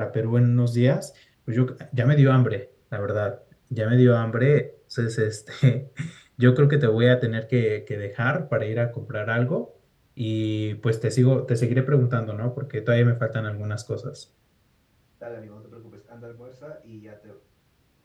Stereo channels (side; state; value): both; identical; correlation 1.00